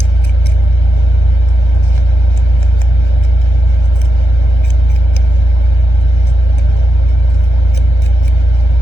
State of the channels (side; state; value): right; late; 1.3 ms